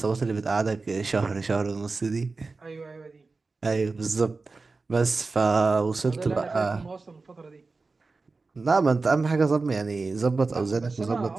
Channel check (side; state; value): left; quieter; 3.9 dB